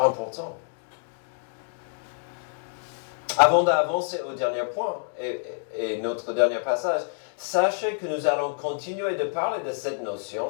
Avant d'avancer au dernier point et notre dernier passage, sachez que nous allons continuer de parler de cette notion,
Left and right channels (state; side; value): silent; right; digital silence